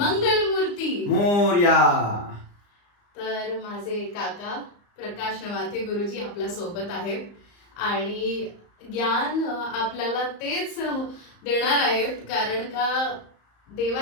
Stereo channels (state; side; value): late; right; 34 ms